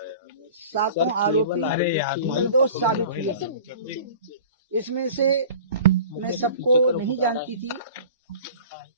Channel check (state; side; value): inverted; both; correlation -0.42